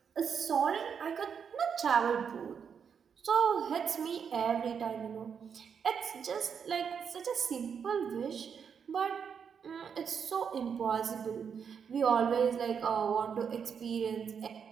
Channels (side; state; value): left; quieter; 7.0 dB